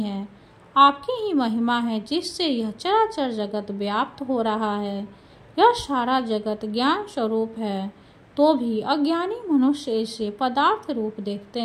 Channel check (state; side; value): identical; both; correlation 1.00